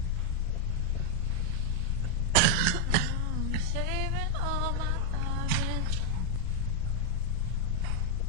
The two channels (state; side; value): different; both; correlation 0.00